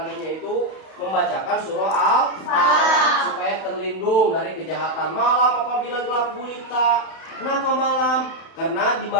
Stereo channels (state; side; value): late; right; 31 ms